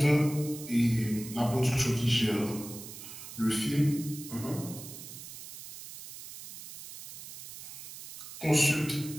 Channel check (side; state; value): right; noise; hiss, 13 dB below the sound